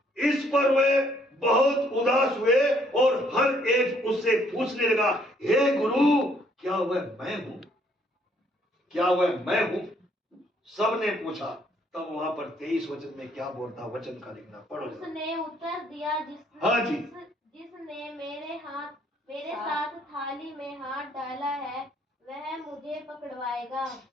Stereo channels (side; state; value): both; normal; correlation 0.66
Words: इस पर वे बहुत उदास हुए और हर एक उससे पूछने लगा, हे गुरु, क्या वह मैं हूं? क्या वह मैं हूं? सबने पूछा। तब वहां पर 23 वचन में क्या बोलता, वचन का लिखना पढ़ो। उसने उत्तर दिया, हाँ जी। जिसने मेरे साथ थाली में हाथ डाला है वह मुझे पकड़वाएगा।